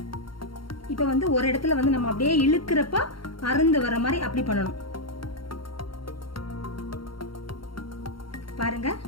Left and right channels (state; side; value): late; right; 0.73 ms